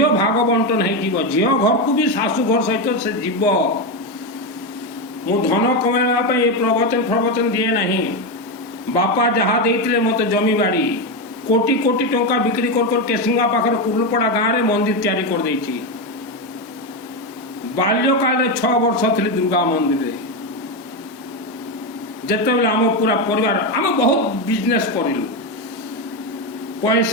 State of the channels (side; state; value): both; normal; correlation 0.11